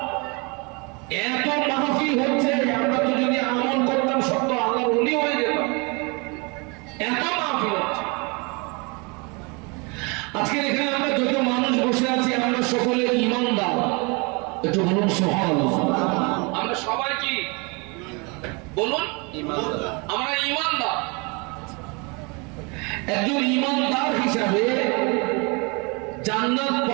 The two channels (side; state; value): left; quieter; 29.9 dB